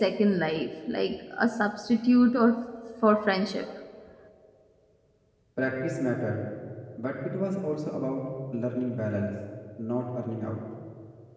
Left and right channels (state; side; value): identical; both; correlation 1.00